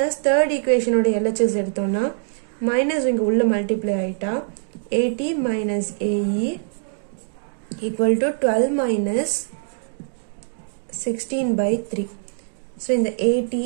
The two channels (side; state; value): left; silent; 64 dB below the other